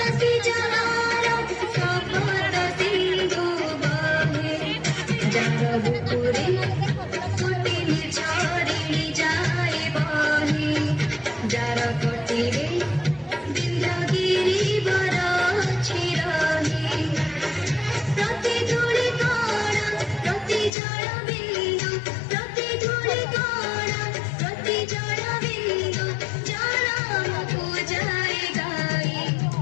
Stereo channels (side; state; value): right; drops out; at 20.7 s